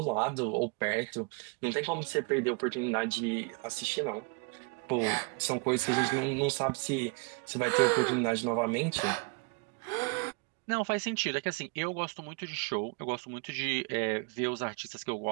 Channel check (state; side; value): quieter; left; 33.0 dB